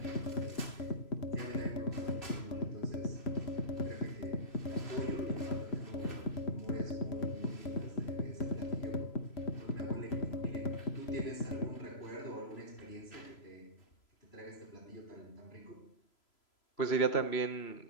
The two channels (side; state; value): right; late; 3.0 ms